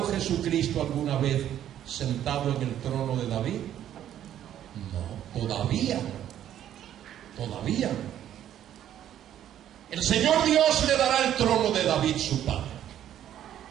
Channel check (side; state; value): left; quieter; 11.1 dB